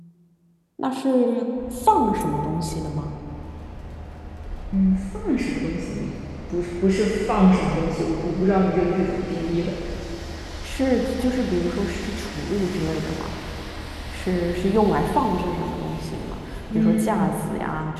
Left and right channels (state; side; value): identical; both; correlation 1.00